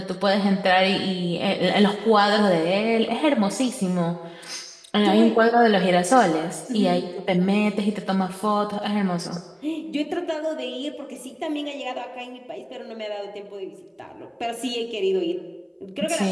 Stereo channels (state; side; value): identical; both; correlation 1.00